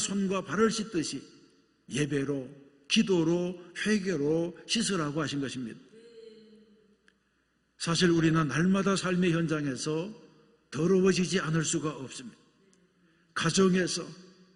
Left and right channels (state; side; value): identical; both; correlation 1.00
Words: 발을 씻듯이 예배로, 기도로, 회개로 씻으라고 하신 것입니다. 사실 우리는 날마다 삶의 현장에서 더러워지지 않을 수가 없습니다. 가정에서,